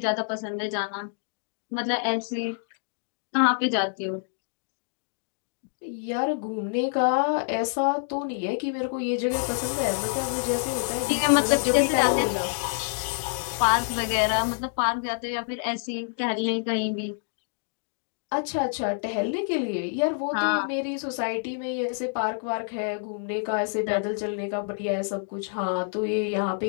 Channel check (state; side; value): silent; right; digital silence